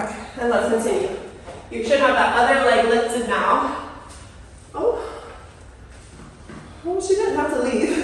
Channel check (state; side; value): identical; both; correlation 1.00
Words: and let's continue. You should have that other leg lifted now. Oh, she didn't have to